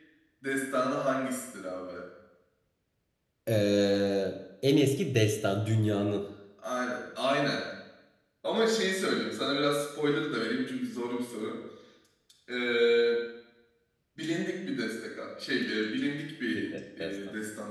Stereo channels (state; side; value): identical; both; correlation 1.00